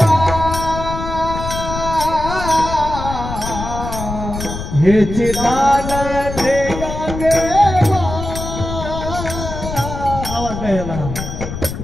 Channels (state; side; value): noise; left; rumble, 7 dB below the sound